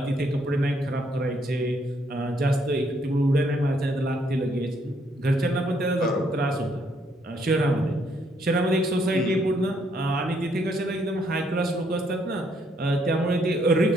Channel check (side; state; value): both; normal; correlation 0.71